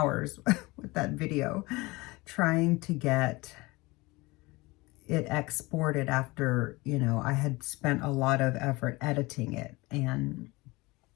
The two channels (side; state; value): right; quieter; 22.8 dB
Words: with that video trying to get it exported after, you know, I had spent a lot of effort editing it. And